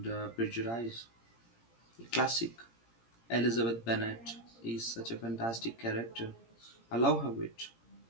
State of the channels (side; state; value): right; late; 17 ms